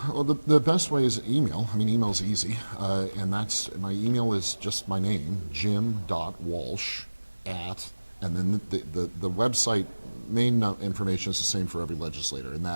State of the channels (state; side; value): inverted; both; correlation -1.00